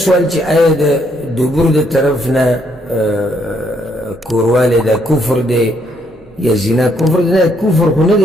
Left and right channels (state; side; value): noise; right; hum, 29 dB below the sound